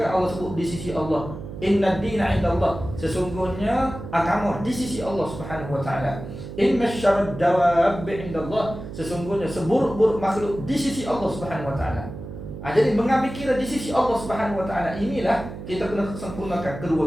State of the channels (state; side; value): noise; right; hum, 10 dB below the sound